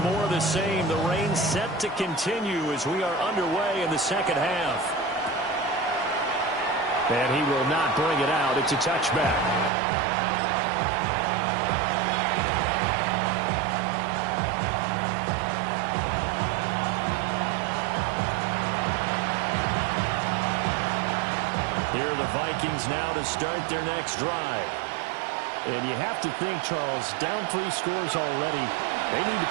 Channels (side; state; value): left; drops out; at 9.7 s